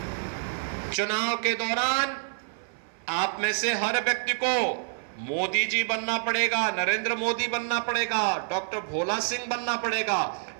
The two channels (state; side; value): silent; left; 60 dB below the other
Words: चुनाव के दौरान आप में से हर व्यक्ति को मोदी जी बनना पड़ेगा, नरेंद्र मोदी बनना पड़ेगा, डॉक्टर भोला सिंह बनना पड़ेगा